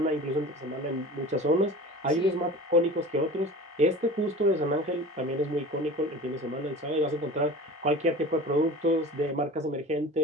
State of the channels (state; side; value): normal; both; correlation 0.37